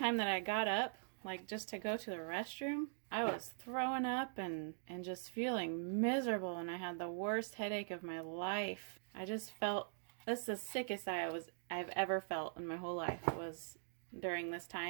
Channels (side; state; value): left; silent; digital silence